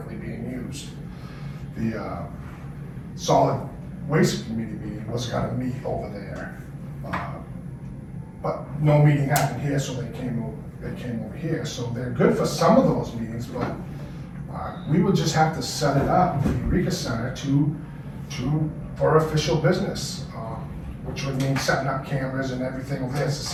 being used. The Solid Waste Committee meeting was gonna meet over there, but no meeting happened here, so they came over they came over here, so they're good for some of those meetings, but we would just have to set it up, the Eureka Center, for official business, which would mean setting up cameras and everything over there. It's the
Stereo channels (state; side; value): identical; both; correlation 1.00